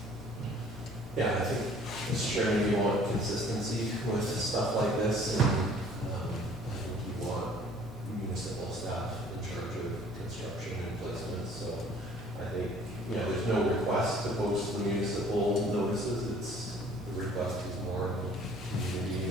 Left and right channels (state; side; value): normal; both; correlation 0.54